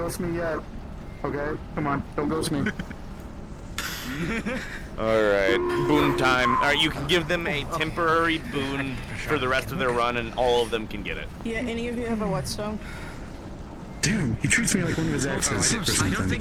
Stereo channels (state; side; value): identical; both; correlation 1.00